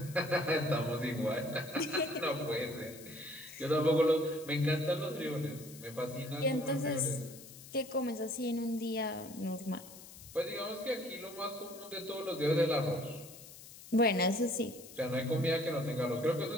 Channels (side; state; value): left; noise; hiss, 17 dB below the sound